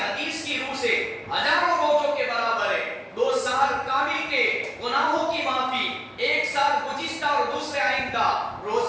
کی روح سے ہزاروں روزوں کے برابر ہے۔ 2 سال کامل کے گناہوں کی معافی، 1 سال گزشتہ اور دوسرے آئندہ۔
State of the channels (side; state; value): both; identical; correlation 1.00